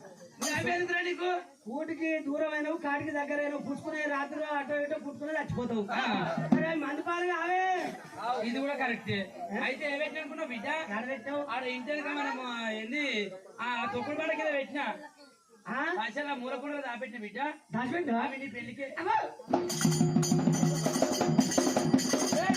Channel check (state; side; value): identical; both; correlation 1.00